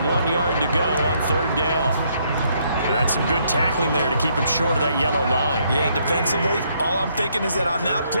1 yard to go on 3rd down. And that's some good tackling there to keep him short of that yellow line. Yeah, and defensively, all I'm thinking is that on that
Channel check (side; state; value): both; inverted; correlation -0.71